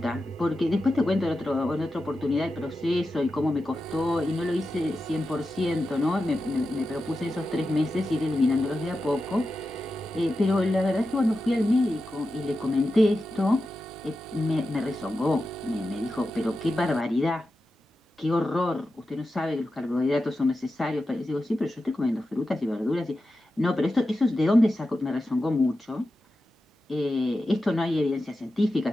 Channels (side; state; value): both; normal; correlation 0.91